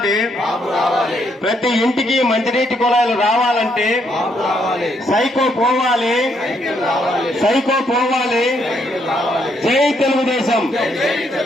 ప్రతి ఇంటికి మంచినీటి కుళాయిలు రావాలంటే, సైకో పోవాలి. జై తెలుగుదేశం,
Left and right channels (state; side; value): normal; both; correlation 0.74